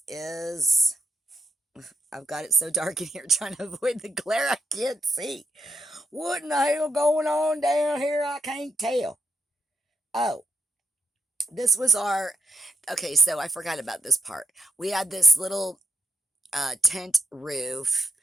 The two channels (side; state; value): both; normal; correlation 0.81